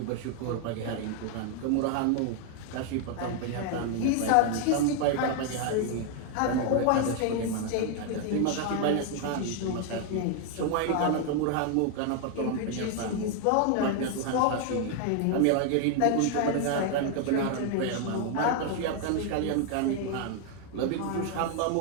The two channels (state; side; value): different; both; correlation 0.00